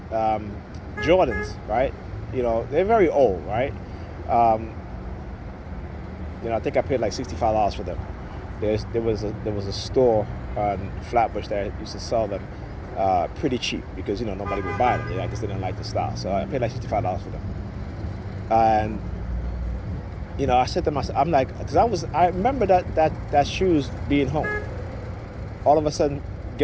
Jordans, right? You know, they're very old, right? I think I paid like $65 for them. There was a store on Flatbush that used to sell them pretty cheap because nobody would buy them. I just didn't like the style, so I paid like $65 for them. And I said to myself, I'm like, because I remember that shoes being home. All of a sudden,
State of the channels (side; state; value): both; identical; correlation 1.00